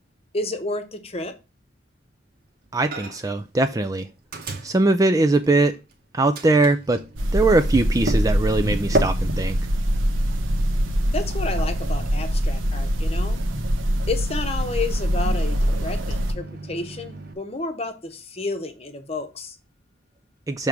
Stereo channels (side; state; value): both; normal; correlation 0.73